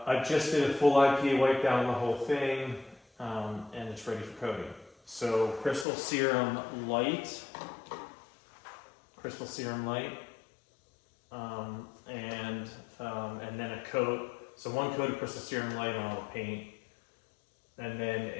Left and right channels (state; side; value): drops out; right; at 5.9 s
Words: just did a full IPA wipe down on the whole thing, and it's ready for coating. So Crystal Serum Light, and then a coat. So one coat of Crystal Serum Light on all the paint, and then